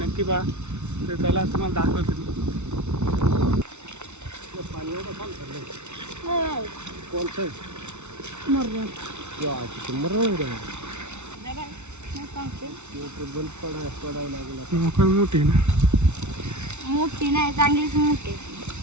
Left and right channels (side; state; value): left; late; 0.82 ms